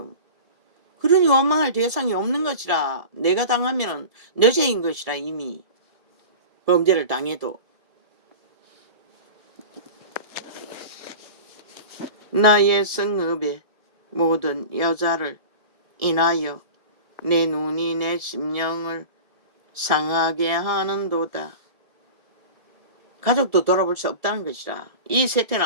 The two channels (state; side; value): late; left; 1.7 ms